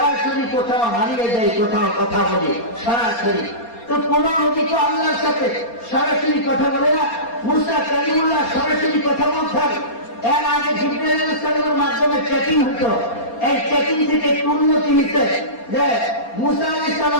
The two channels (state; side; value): late; right; 4.3 ms